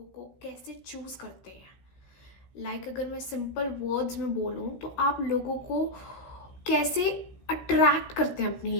को कैसे चूज करते हैं। अगर मैं सिंपल वर्ड्स में बोलूँ तो आप लोगों को कैसे अट्रैक्ट करते हैं अपनी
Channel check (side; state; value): right; late; 16 ms